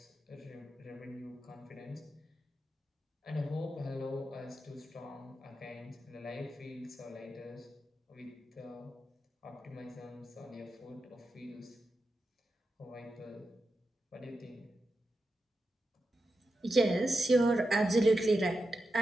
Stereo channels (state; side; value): normal; both; correlation 0.89